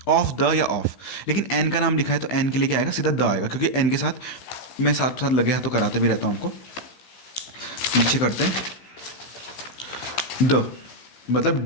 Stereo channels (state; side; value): late; right; 15 ms